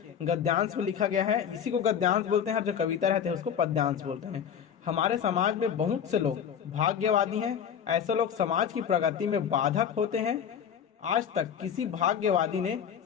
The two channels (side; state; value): right; quieter; 8.2 dB